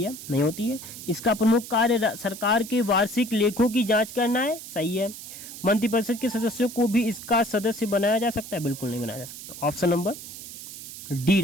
है, नहीं होती है। इसका प्रमुख कार्य सरकार के वार्षिक लेखों की जांच करना है, सही है। मंत्रिपरिषद के सदस्यों को भी इसका सदस्य बनाया जा सकता है, बिल्कुल नहीं बनाया जा सकता। ऑप्शन नंबर डी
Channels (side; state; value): right; noise; hiss, 12 dB below the sound